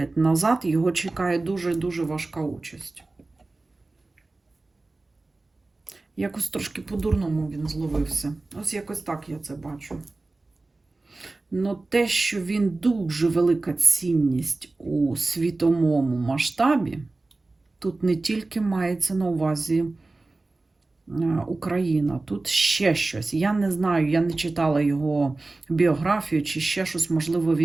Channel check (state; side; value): quieter; left; 3.2 dB